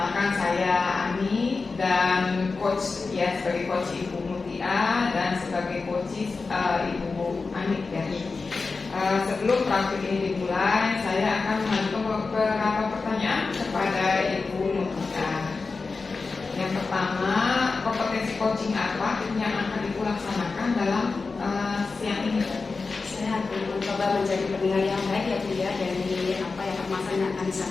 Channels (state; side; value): quieter; right; 4.2 dB